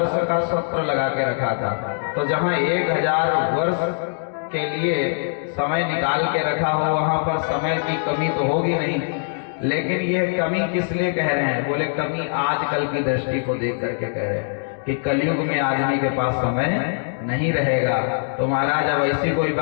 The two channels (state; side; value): silent; right; digital silence